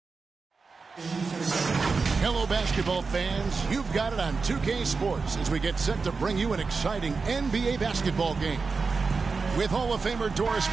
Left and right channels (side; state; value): left; quieter; 4.6 dB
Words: Hello, basketball fans. You've got it on 2K Sports as we get set to bring you an exciting NBA basketball game. With Hall of Famer Doris